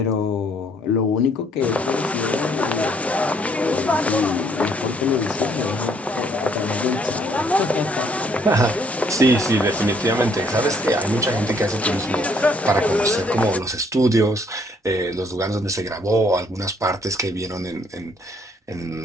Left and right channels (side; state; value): both; normal; correlation 0.65